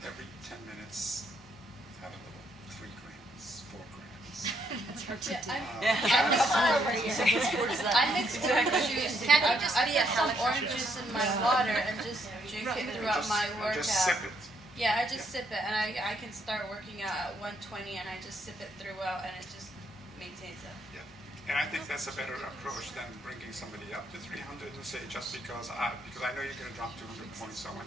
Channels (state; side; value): normal; both; correlation 0.73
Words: every 10 minutes, have a little 3 grams, 4 grams. That's hard to do. I mix orange juice. Can't I just be some orange juice in my water and just drink it throughout my workout? Just sip it. Yeah, I just sip it, and I can start working out at 120, and I just sip it throughout, and it just maintains it. Yeah, and I think that's a better approach than bringing somebody up to 300 and say just because I know you're going to drop 200 points, so I want